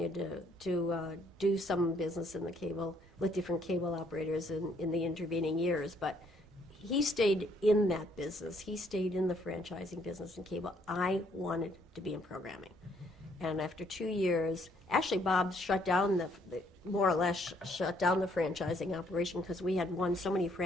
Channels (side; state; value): both; normal; correlation 0.67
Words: to do some business in the cable with different cable operators in the intervening years. But he stayed in that business. He stayed in the franchising business in cable. I wanted to be in programming. And after 2 years, actually Bob shut down more or less shut down the franchising operation because we had won so many